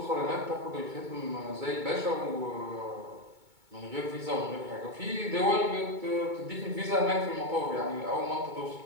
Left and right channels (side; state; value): left; late; 2.2 ms